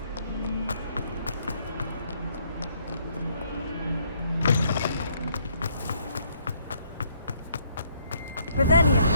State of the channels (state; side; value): inverted; both; correlation -0.68